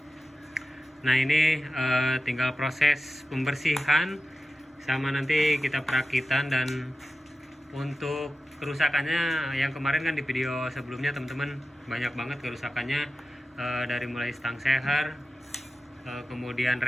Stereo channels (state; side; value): normal; both; correlation 0.92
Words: Nah, ini tinggal proses pembersihan sama nanti kita perakitan. Dan untuk kerusakannya yang kemarin kan di video sebelumnya teman-teman banyak banget kerusakannya, dari mulai stang seher, kemudian